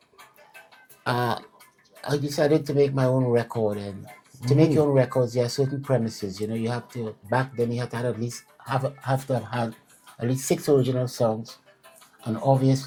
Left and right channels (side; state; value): both; identical; correlation 1.00